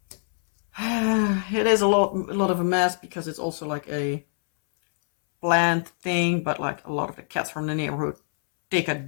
It is a lot of a mess because it's also like a plant thing, but like a lot of the cats from the neighborhood take a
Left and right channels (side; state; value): right; silent; 62 dB below the other